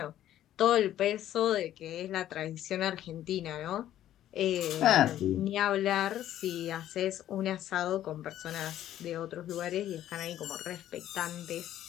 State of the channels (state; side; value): quieter; right; 12.2 dB